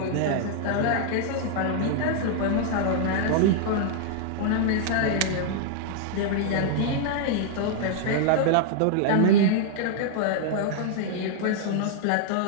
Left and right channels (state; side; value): different; both; correlation -0.01